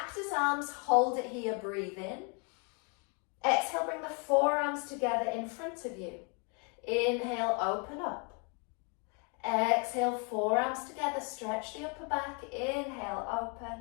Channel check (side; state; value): right; quieter; 36.1 dB